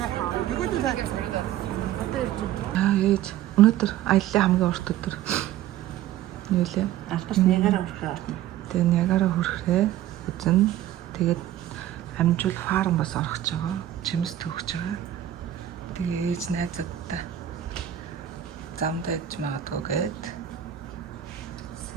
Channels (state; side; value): quieter; left; 12.3 dB